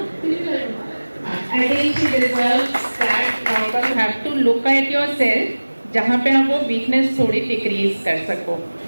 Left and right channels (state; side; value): inverted; both; correlation -1.00